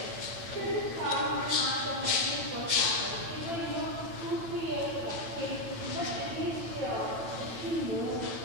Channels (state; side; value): late; left; 9.0 ms